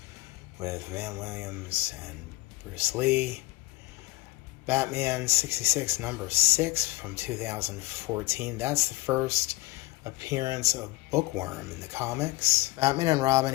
with Van Williams and Bruce Lee. Batman 66 number 6 from 2014. That's the first appearance of Bookworm in the comics. Batman and Robin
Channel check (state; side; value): quieter; right; 20.4 dB